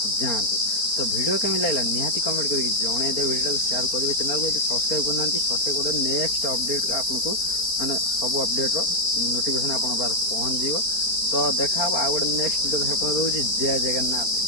जातु। तो वीडियो केमी लगा निहाती कमेंट करके जनईदे वीडियो को शेयर करेंगे चैनल को सब्सक्राइब करना सब्सक्राइब कर नेक्स्ट अपडेट आपको माने सब अपडेट नोटिफिकेशन आप पहुँच जाव। तो देखा आउ गोटे नेक्स्ट वीडियो देखा रोज जय जगन्नाथ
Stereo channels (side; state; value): right; late; 4.4 ms